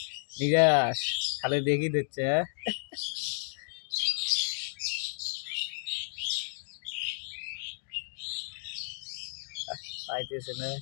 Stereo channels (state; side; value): silent; right; digital silence